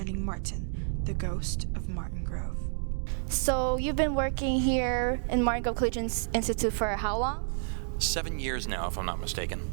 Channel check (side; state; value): left; silent; digital silence